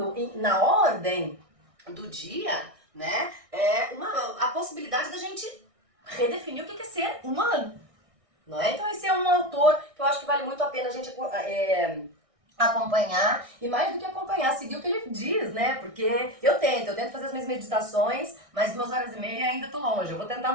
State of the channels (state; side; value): late; left; 1.6 ms